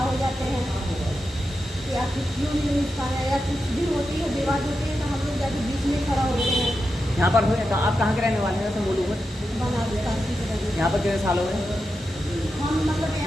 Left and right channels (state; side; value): normal; both; correlation 0.89